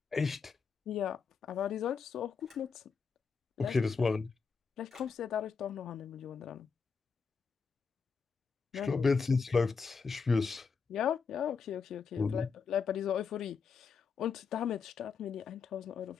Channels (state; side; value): quieter; right; 5.5 dB